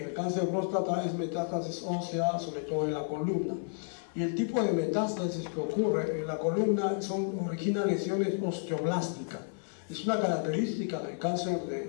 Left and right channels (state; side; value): silent; right; digital silence